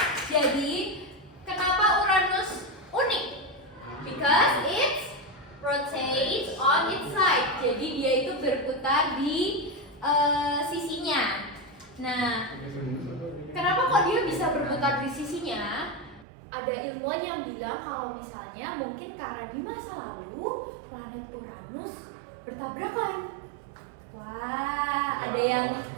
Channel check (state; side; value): drops out; left; at 16.2 s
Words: Jadi, kenapa Uranus unik? Because it rotates on its side. Jadi dia itu berputar di sisinya. Nah, kenapa kok dia bisa berputar di sisinya? Ada ilmuwan yang bilang kalau misalnya mungkin karena di masa lalu planet Uranus bertabrakan. Wah, ada yang